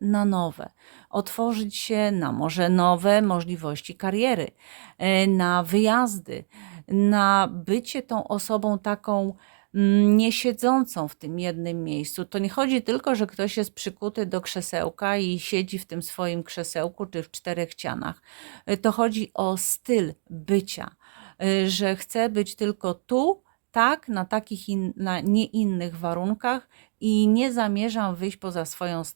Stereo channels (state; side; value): silent; left; digital silence